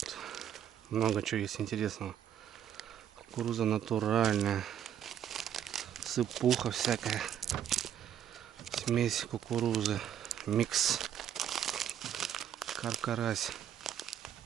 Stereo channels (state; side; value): quieter; left; 9.9 dB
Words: много чего есть интересного. Кукуруза натуральная. Сыпуха всякая. Смесь кукурузы. Микс. Каркарась.